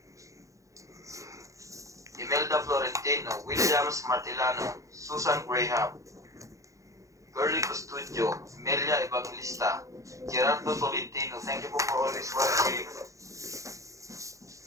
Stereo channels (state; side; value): late; left; 0.15 ms